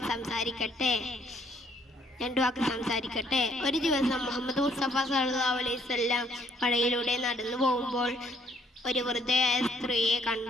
സംസാരിക്കട്ടെ. ഒരു ദിവസം മുഹമ്മദ് മുസ്തഫ സല്ലല്ലാഹു അലൈഹി വസല്ലം കടയിലൂടെ നടന്നു പോകുമ്പോൾ ഒരു വൃദ്ധയായ സ്ത്രീയെ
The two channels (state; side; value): normal; both; correlation 0.66